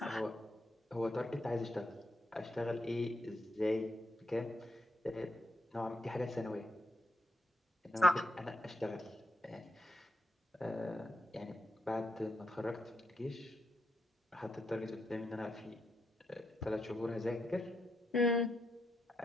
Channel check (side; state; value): both; normal; correlation 0.81